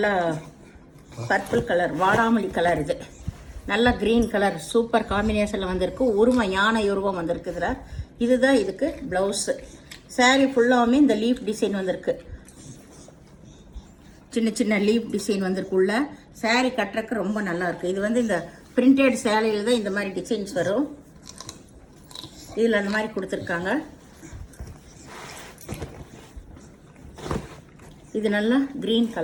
பர்பிள் கலர், வாடாமல்லி கலர். இது நல்லா க்ரீன் கலர் சூப்பர் காம்பினேஷனில் வந்திருக்கு. உருவம் யானை உருவம் வந்திருக்கு இதில். இதுதான் இதுக்கு ப்ளவுஸு. சாரீ ஃபுல்லாகவுமே இந்த லீஃப் டிசைன் வந்திருக்கு. சின்ன சின்ன லீஃப் டிசைன் வந்திருக்கு உள்ள. சாரீ கட்டுறதுக்கு ரொம்ப நல்லாயிருக்கு. இது இந்த பிரிண்டட் சேலையில் தான் இந்த மாதிரி டிசைன்ஸ் வரும். இதில் அந்த மாதிரி கொடுத்துருக்காங்க. இது நல்லா க்ரீன்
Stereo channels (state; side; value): identical; both; correlation 1.00